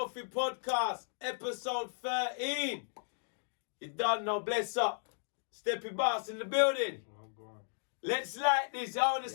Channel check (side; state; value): right; silent; digital silence